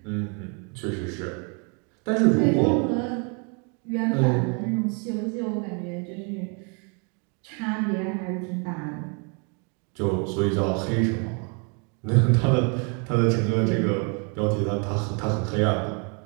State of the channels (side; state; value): left; quieter; 35.9 dB